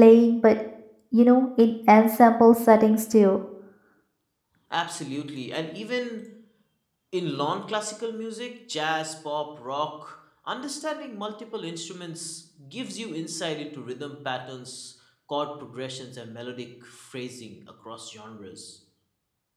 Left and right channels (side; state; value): both; identical; correlation 1.00